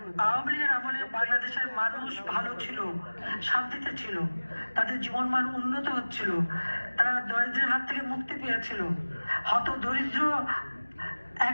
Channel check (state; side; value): inverted; both; correlation -1.00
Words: আওয়ামী লীগের আমলে বাংলাদেশের মানুষ ভালো ছিল, শান্তিতে ছিল, তাদের জীবন মান উন্নত হচ্ছিল, তারা দরিদ্রের হাত থেকে মুক্তি পেয়েছিল, হত দরিদ্র